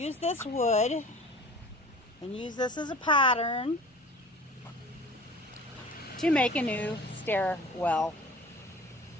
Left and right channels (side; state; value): both; normal; correlation 0.43